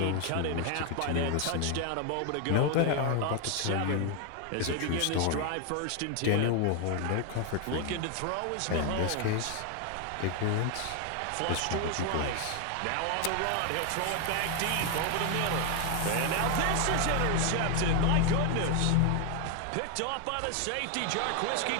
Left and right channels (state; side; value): different; both; correlation 0.00